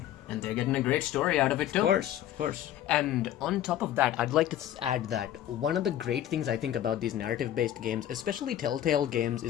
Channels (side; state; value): right; quieter; 11.8 dB